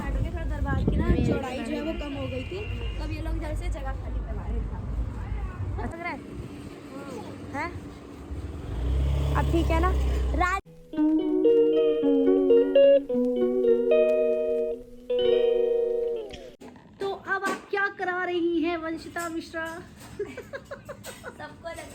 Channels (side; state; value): both; identical; correlation 1.00